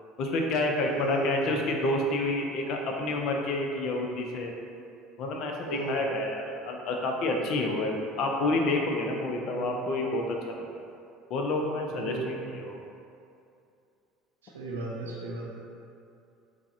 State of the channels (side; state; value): both; normal; correlation 0.37